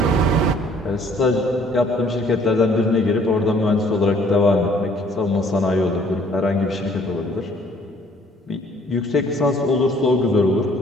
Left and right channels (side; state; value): both; normal; correlation 0.59